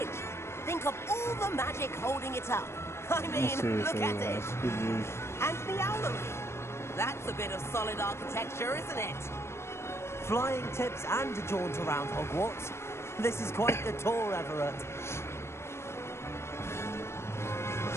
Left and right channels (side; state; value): right; late; 0.13 ms